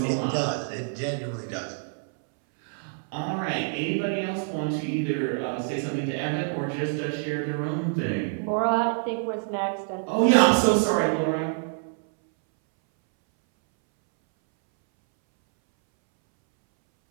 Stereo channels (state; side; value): silent; left; 61 dB below the other